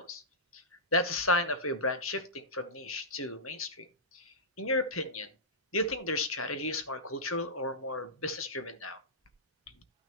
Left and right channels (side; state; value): both; normal; correlation -0.15